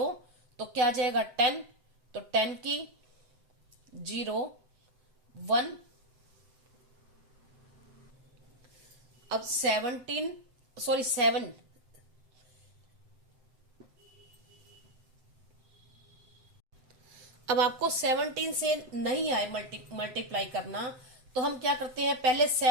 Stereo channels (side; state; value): left; late; 7.8 ms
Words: तो क्या आ जाएगा 10, तो 10 की 0 1। अब 7 अब आपको 17 से नहीं आए मल्टीप्लाई करना, तो हम क्या करते हैं पहले